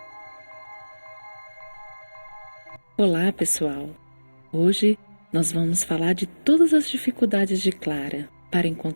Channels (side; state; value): both; inverted; correlation -1.00